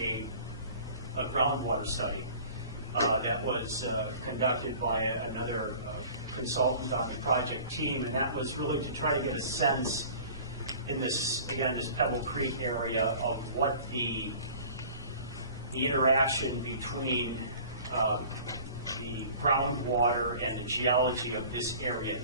groundwater study that was conducted by another consultant on the project team, and that was really to try to get a sense in this Pebble Creek area of what the interaction between the groundwater and the geology of this area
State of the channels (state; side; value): inverted; both; correlation -0.45